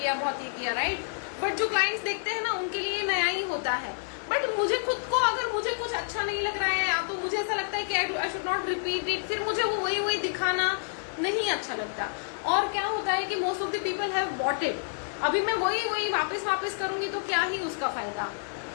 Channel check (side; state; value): right; silent; 58 dB below the other